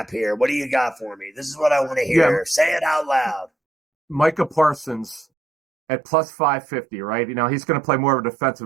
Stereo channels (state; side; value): drops out; left; at 5.2 s